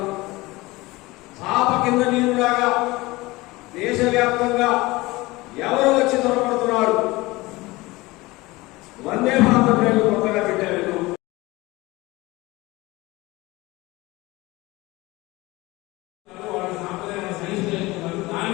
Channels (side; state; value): right; quieter; 21.0 dB